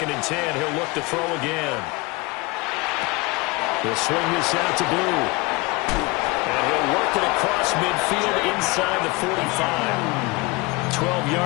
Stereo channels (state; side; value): quieter; right; 24.5 dB